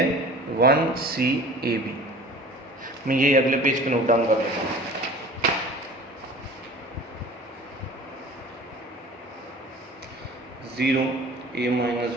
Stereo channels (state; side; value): normal; both; correlation 0.43